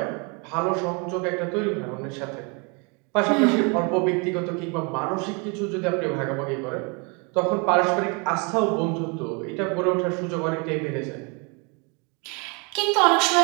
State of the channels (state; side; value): quieter; left; 32.5 dB